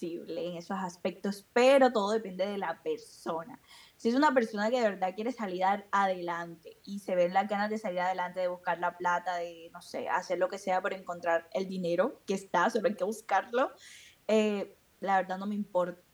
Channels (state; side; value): identical; both; correlation 1.00